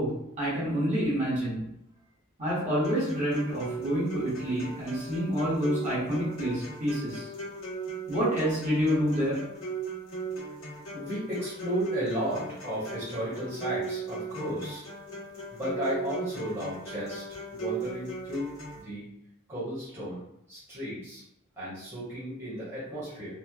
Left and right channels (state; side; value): normal; both; correlation 0.51